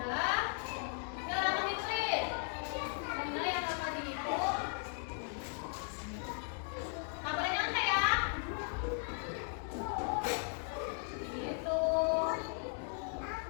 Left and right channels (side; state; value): right; silent; 53 dB below the other